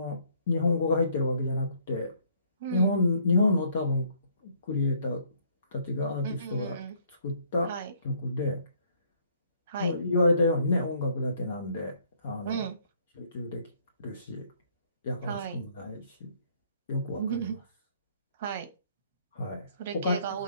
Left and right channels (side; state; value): both; inverted; correlation -0.64